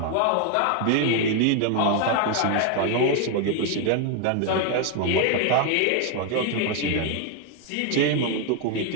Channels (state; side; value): different; both; correlation 0.01